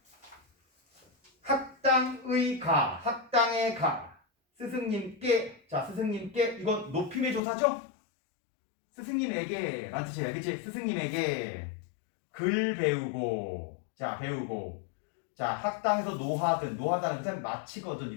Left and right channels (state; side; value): drops out; right; at 7.4 s